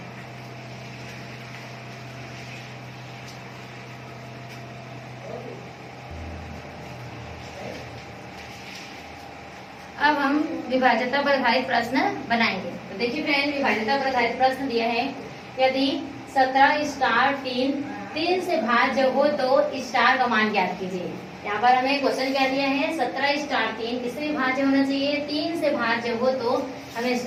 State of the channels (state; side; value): identical; both; correlation 1.00